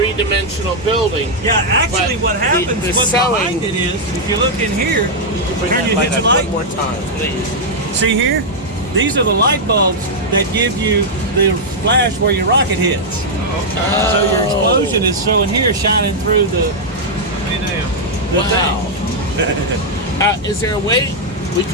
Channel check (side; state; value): both; normal; correlation -0.04